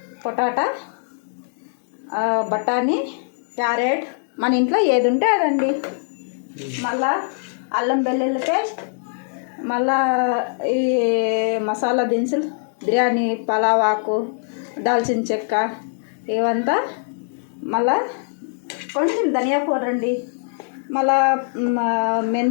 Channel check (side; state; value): right; silent; digital silence